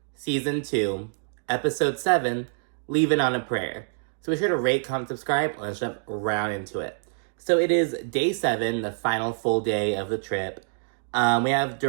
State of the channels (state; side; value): silent; left; 61 dB below the other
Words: Season 2, Episode 7, Leavin' on a Prayer. So be sure to rate, comment, subscribe, and let's jump right into it. So it is day 7, the final full day of the trip. We have